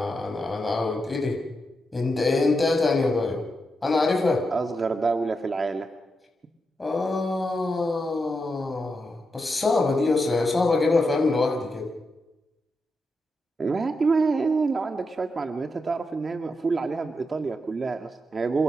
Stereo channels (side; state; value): both; normal; correlation 0.85